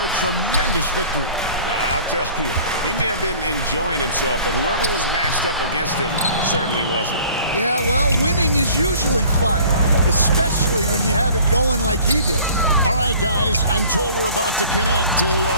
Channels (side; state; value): both; inverted; correlation -0.49